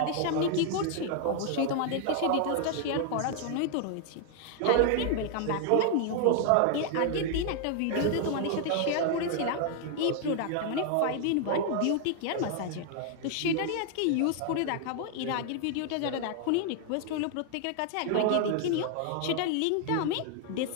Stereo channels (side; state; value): both; different; correlation 0.00